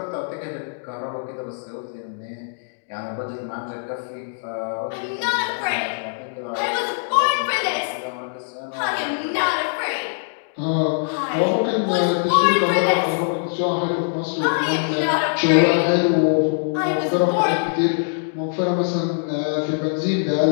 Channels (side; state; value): right; silent; digital silence